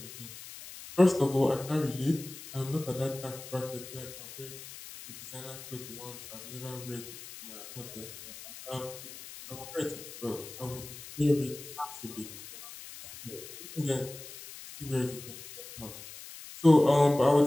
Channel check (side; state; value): left; noise; hiss, 14 dB below the sound